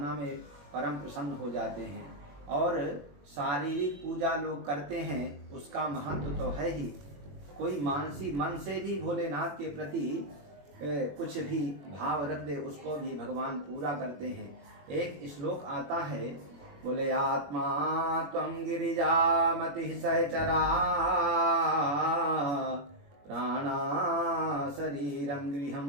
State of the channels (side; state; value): left; late; 21 ms